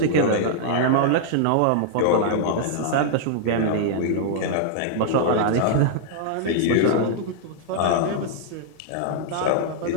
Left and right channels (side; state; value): both; different; correlation -0.01